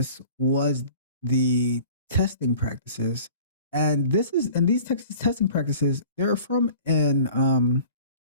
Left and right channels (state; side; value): inverted; both; correlation -0.46